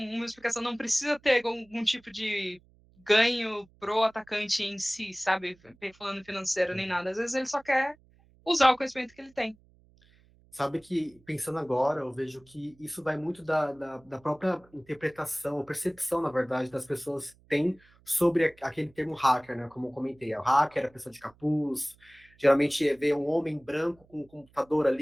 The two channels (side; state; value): right; noise; hum, 30 dB below the sound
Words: explicação, não precisa ter algum tipo de ganho pro atacante em si, sabe, falando financeiro nem nada. Às vezes ele só quer usar o conhecimento que ele tem. Sabe que, pensando agora, eu vejo que isso vai muito da própria interpretação, percepção, na verdade, das pessoas têm sobre aquele termo hacker, né? Como eu comentei, o hacker é a pessoa de capuz, geralmente vê um homem branco com um computador